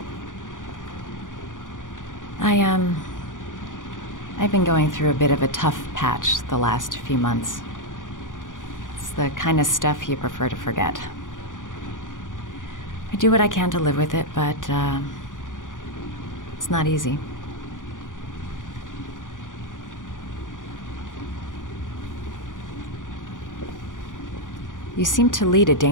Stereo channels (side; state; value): right; late; 0.88 ms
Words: I've been going through a bit of a tough patch the last few months. It's the kind of stuff you prefer to forget. I do what I can to live with it, but it's not easy. You seem to lead a